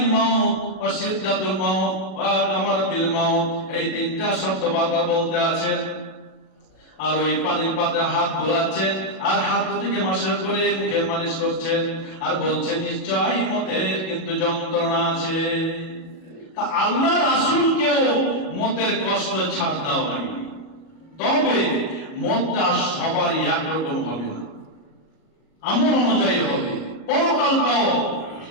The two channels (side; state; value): right; late; 37 ms